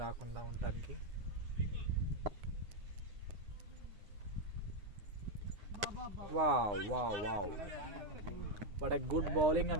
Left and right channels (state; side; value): late; left; 9.5 ms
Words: రాకుండా ఉండటానికి. Wow wow wow but a good bowling